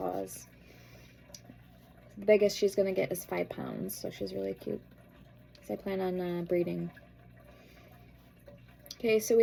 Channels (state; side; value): identical; both; correlation 1.00